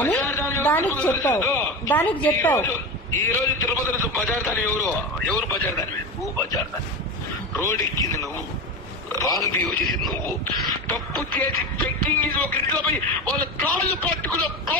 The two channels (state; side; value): normal; both; correlation 0.23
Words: దానికి చెప్పావు. ఈ రోజు తిరుపతి బజార్ దాని ఎవరు బజార్ దాని? నువ్వు బజార్ దాని. రోడ్ ఎక్కింది నువ్వు, రాంగ్ బిహేవ్ చేసింది నువ్వు, తప్పు చేసి చెక్కింగ్ ఒక ఇంట్లో పోయి వాళ్ళ కాళ్ళు పట్టుకున్న